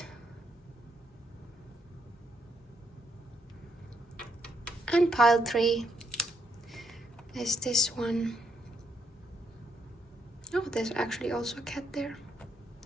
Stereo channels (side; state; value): both; normal; correlation 0.75